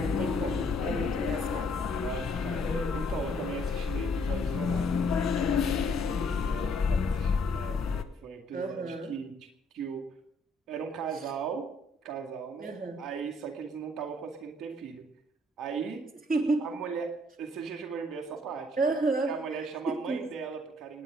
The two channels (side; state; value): both; normal; correlation 0.65